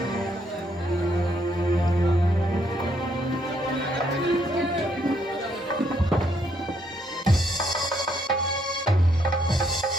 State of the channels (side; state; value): both; normal; correlation 0.72